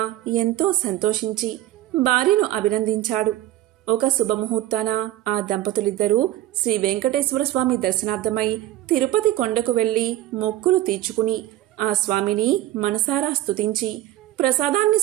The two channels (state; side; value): quieter; left; 14.5 dB